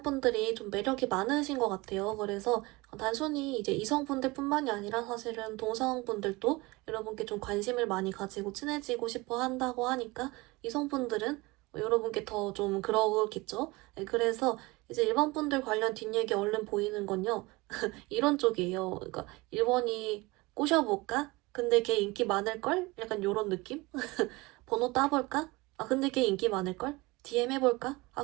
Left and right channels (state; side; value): quieter; left; 23.0 dB